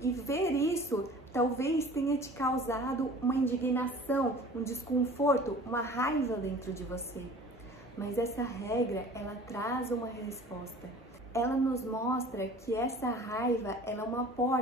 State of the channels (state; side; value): normal; both; correlation 0.45